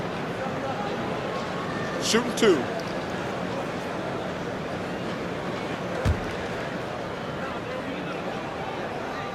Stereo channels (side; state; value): both; identical; correlation 1.00